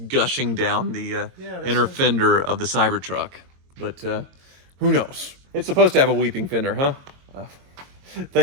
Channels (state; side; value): late; left; 22 ms